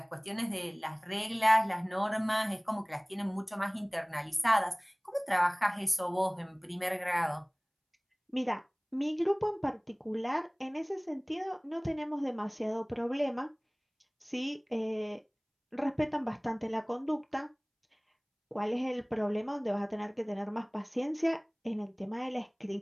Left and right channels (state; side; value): identical; both; correlation 1.00